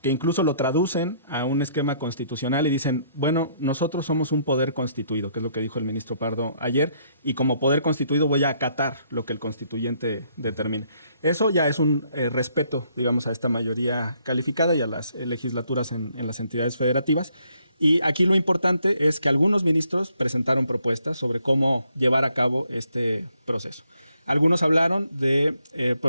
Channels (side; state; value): both; inverted; correlation -0.69